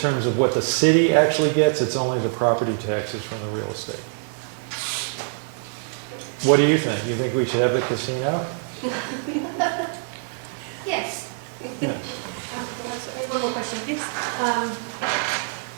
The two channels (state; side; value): silent; left; 62 dB below the other